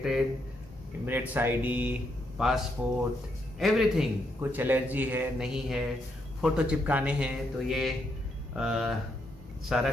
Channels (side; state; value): both; normal; correlation 0.78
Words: emirates ID, passport, everything. कुछ एलर्जी है नहीं है, फ़ोटो चिपकाने हैं, तो ये सारा